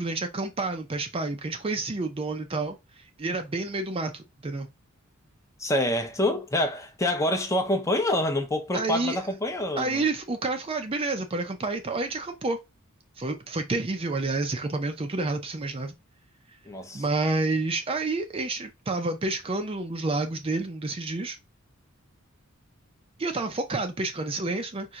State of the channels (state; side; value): normal; both; correlation 0.39